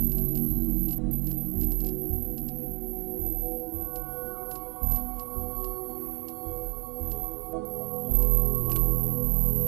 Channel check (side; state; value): left; quieter; 28.6 dB